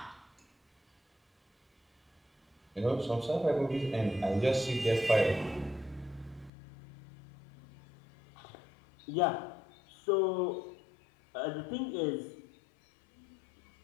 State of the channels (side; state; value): right; drops out; at 6.5 s